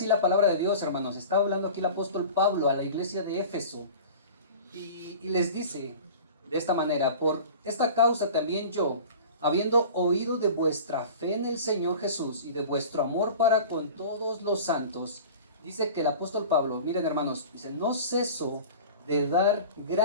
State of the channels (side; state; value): both; inverted; correlation -0.38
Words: la palabra de Dios, hermanos. Está hablando aquí el apóstol Pablo a la iglesia de Éfeso. Y les dice de esta manera: por esta causa también yo, habiendo oído de vuestra fe en el Señor Jesús y de vuestro amor para con todos los santos, dice que el apóstol Pablo, miren hermanos, dice: no ceso de dar